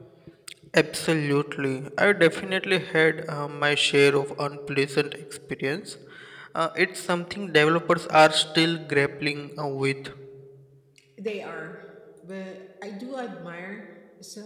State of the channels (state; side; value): identical; both; correlation 1.00